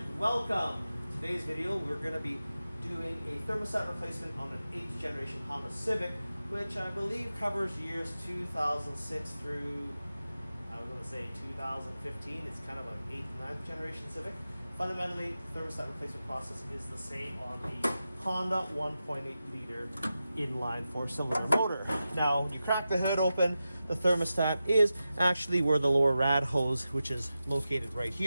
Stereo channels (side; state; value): both; inverted; correlation -0.92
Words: welcome. Today's video, we're going to be doing a thermostat replacement on an 8th generation Honda Civic, which I believe covers years 2006 through, I was going to say 2015. It's kind of an 8th and 9th generation Civic. Fundamentally, the thermostat replacement process is the same on the Honda 1.8 liter inline 4-cylinder motor. Now, when you crack the hood open, the thermostat is actually where the lower rad hose, which is located right